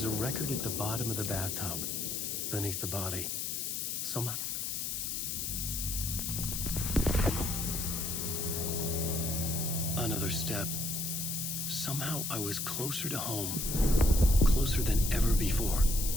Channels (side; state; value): left; noise; hiss, 2 dB below the sound